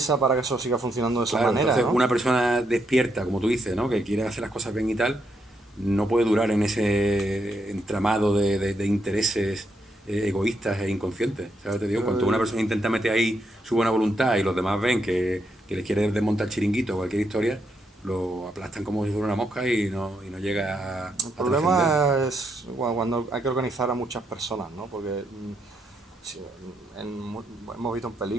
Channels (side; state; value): both; normal; correlation 0.78